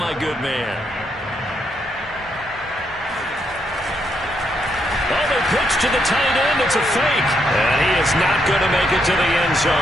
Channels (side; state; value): both; normal; correlation 0.77